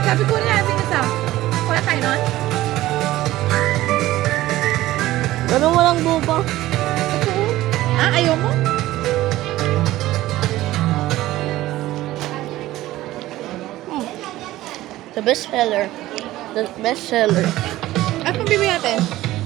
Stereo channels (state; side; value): quieter; left; 16.0 dB